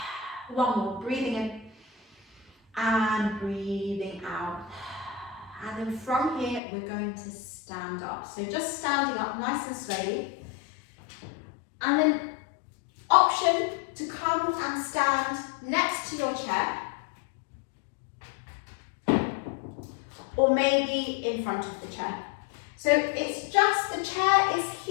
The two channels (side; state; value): right; drops out; at 6.6 s